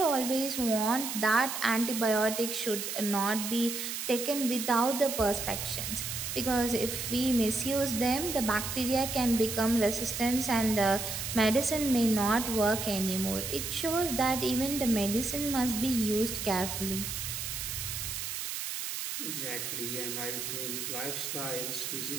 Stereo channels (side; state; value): right; noise; hiss, 4 dB below the sound